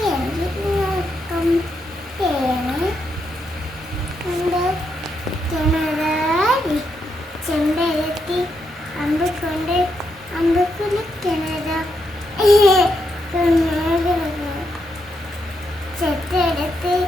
നോക്കം തേങ്ങ കിണറാടി ചെമ്പരത്തി അമ്പക്കൊണ്ട് അമ്പക്കുള്ള കിണറ ചെത്തെടുത്ത്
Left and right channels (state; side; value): normal; both; correlation 0.81